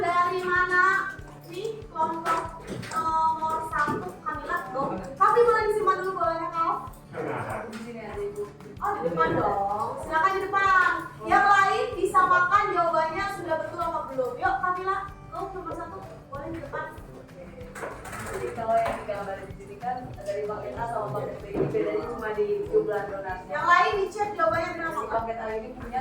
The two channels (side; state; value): both; identical; correlation 1.00